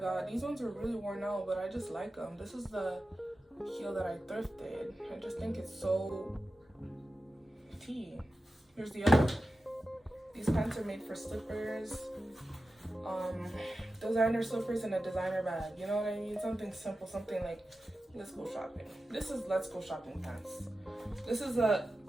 These ones are really worn out, but I just like them. This is the heel that I thrifted. I just think it's so tea. Here's the other one. These pants are made for slippers, designer slippers in a designer bag. You know what I mean? Something simple, something like, let's go shopping. This is let's go shopping pants. This is a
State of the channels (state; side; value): normal; both; correlation 0.93